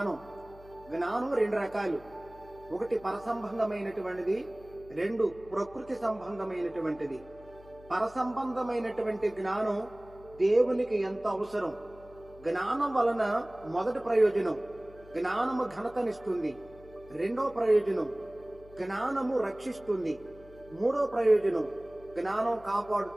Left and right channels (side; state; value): left; noise; hum, 21 dB below the sound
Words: జ్ఞానం 2 రకాలు. ఒకటి పరసంబంధమైనటువంటిది, 2 ప్రకృతి సంబంధమైనటువంటిది. పరసంబంధమైనటువంటి జ్ఞానం దేవునికి ఎంత అవసరం. జ్ఞానం వలన మొదటి ప్రయోజనం జ్ఞానము ఘనతనిస్తుంది, 2వ ప్రయోజనం జ్ఞానము రక్షిస్తుంది, 3వ ప్రయోజనం జ్ఞానం